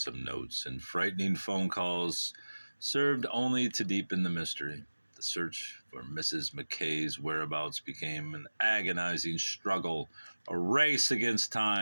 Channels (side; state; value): both; inverted; correlation -1.00